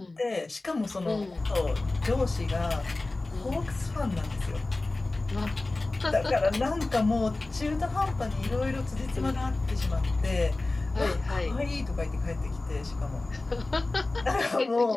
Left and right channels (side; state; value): right; quieter; 3.1 dB